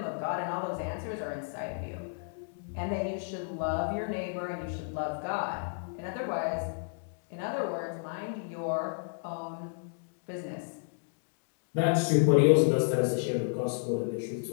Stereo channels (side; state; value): right; silent; digital silence